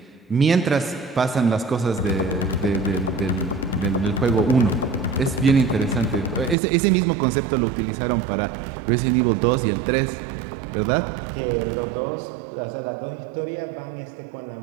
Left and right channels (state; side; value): drops out; left; at 6.6 s